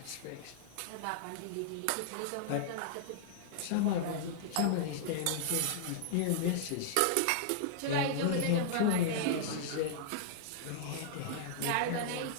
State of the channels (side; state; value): both; different; correlation -0.01